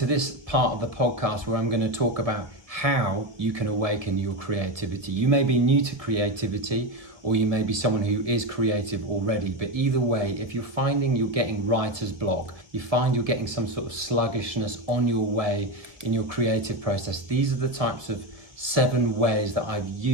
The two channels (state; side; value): late; left; 1.9 ms